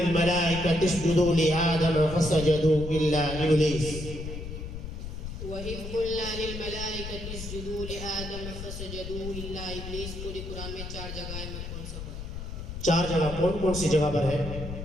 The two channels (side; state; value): left; noise; rumble, 8 dB below the sound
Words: اسجدوا لآدم فسجدوا إلا إبليس. وإذ قلنا للملائكة اسجدوا لآدم فسجدوا إلا إبليस पूरी कुरान में 4 जगह है, में कौन सा पढ़ा? 4 जगह कौन कौन सी जगह पर है?